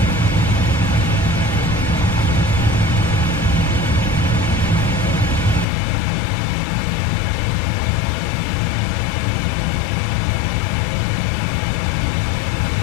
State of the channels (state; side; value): drops out; right; at 5.7 s